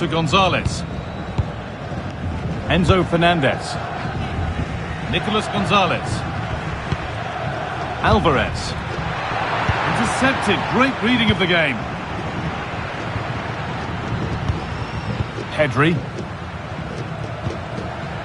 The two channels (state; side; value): identical; both; correlation 1.00